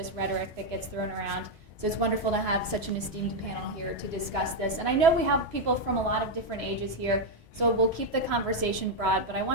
rhetoric that gets thrown around. So it's wonderful to have such an esteemed panel here to discuss this. And I know we have people from a lot of different ages here, so we'll keep the conversation broad, but I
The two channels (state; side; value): normal; both; correlation 0.02